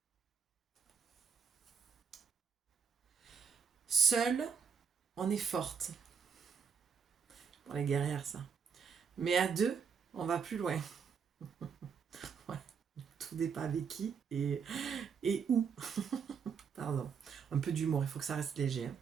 Seul, on est forte. Pour les guerrières, ça. Mais à 2, on va plus loin. Ouais, tout dépend avec qui et où. Pardon, un peu d'humour, il faut que ça reste léger. Hein.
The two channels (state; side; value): quieter; left; 6.4 dB